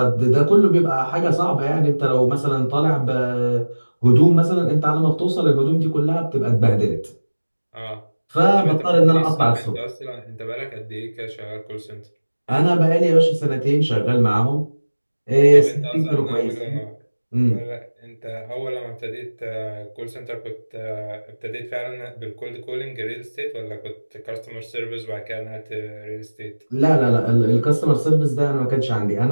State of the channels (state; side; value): inverted; both; correlation -1.00